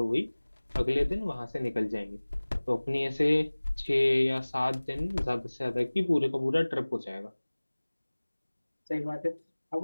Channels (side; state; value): both; inverted; correlation -1.00